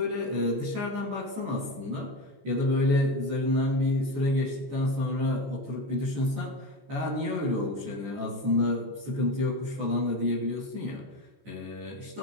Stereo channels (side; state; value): left; late; 14 ms